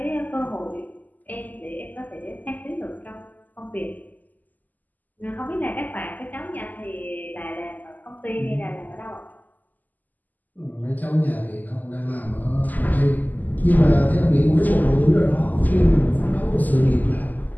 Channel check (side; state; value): right; late; 0.083 ms